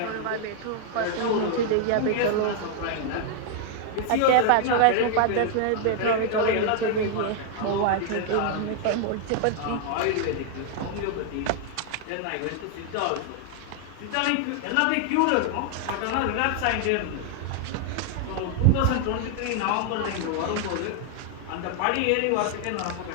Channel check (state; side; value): different; both; correlation 0.00